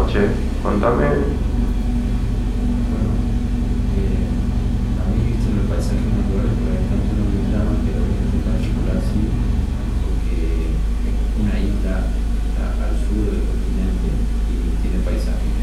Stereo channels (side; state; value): both; identical; correlation 1.00